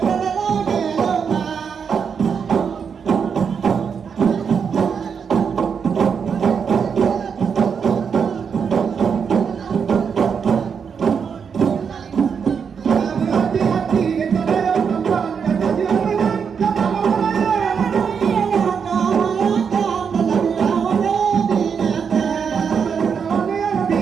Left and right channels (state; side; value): quieter; left; 6.6 dB